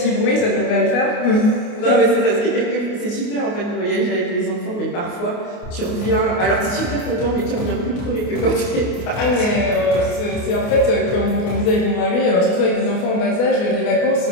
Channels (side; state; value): right; late; 28 ms